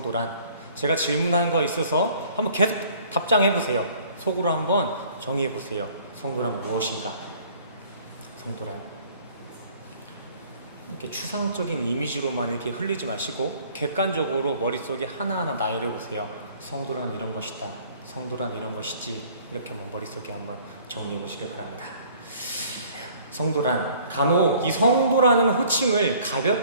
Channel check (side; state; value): both; inverted; correlation -0.55